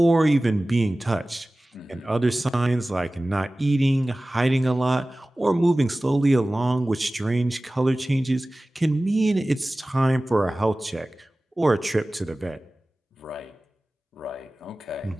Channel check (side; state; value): both; normal; correlation 0.97